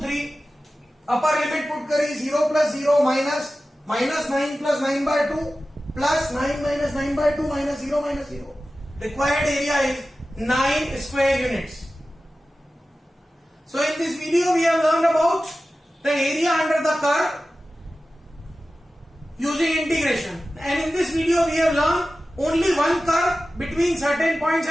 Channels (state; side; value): normal; both; correlation 0.95